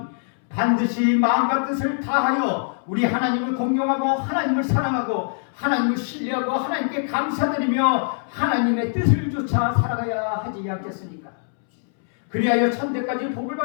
반드시 마음과 뜻을 다하여 우리 하나님을 공경하고 하나님을 사랑하고 하나님을 신뢰하고 하나님께 감사드리며 하나님의 뜻을 쫓아 살아가야 하지 않겠습니까? 그리하여 1000대까지 복을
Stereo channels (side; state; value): right; silent; 64 dB below the other